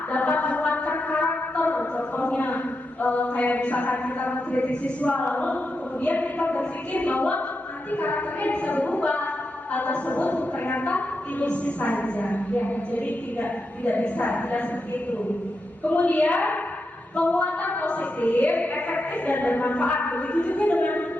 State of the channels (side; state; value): both; normal; correlation 0.86